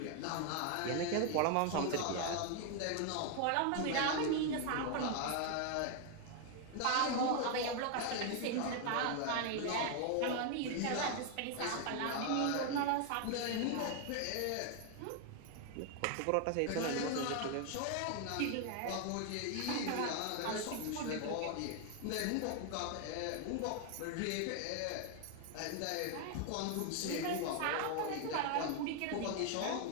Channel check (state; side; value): different; both; correlation 0.00